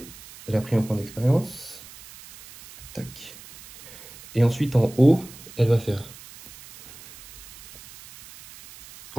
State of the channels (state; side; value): noise; right; hiss, 19 dB below the sound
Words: Elle a pris un point d'expérience. Tac. Et ensuite en haut, elle va faire...